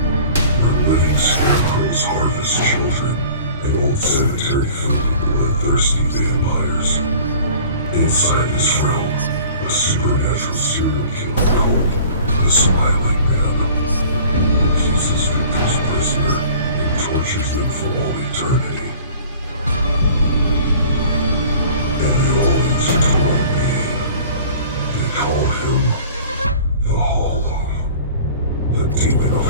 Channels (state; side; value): inverted; both; correlation -0.46